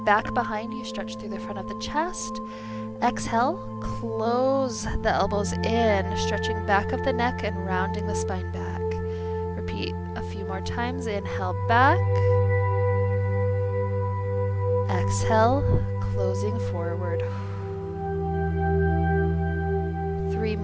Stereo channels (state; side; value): identical; both; correlation 1.00